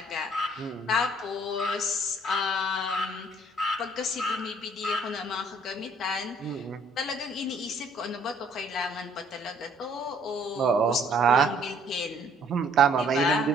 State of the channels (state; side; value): normal; both; correlation 0.61